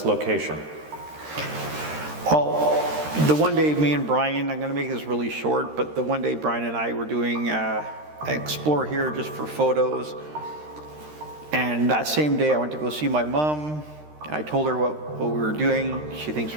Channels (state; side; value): late; left; 13 ms